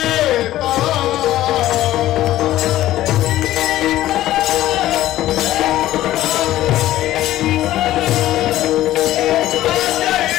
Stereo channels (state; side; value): quieter; right; 14.4 dB